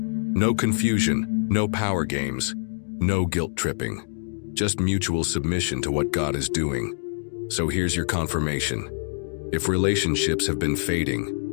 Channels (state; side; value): silent; right; digital silence